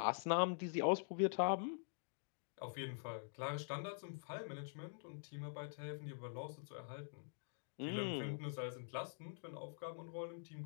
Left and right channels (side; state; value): right; silent; digital silence